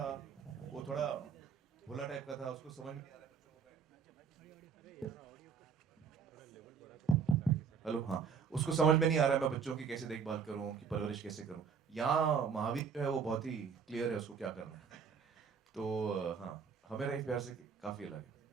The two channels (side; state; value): left; quieter; 6.4 dB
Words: वो थोड़ा भोला टाइप का था, उसको समझ में हेलो, हाँ, उसको समझ में नहीं आ रहा है मैं बच्चों की कैसे देखभाल करूं, उनकी परवरिश कैसे करूं। यहाँ महावीर जो है वो बहुत ही क्लियर है उसको क्या करना है। तो हाँ, हमें रही प्यार से काफी अलग है।